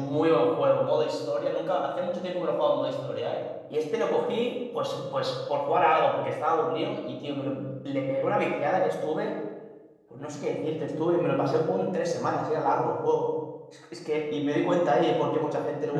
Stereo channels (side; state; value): both; identical; correlation 1.00